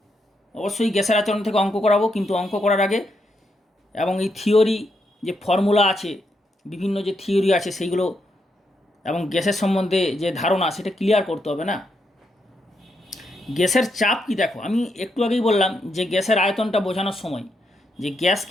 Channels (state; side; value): normal; both; correlation 0.80